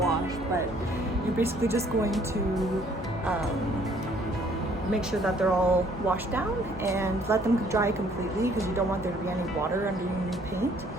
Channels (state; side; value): normal; both; correlation 0.61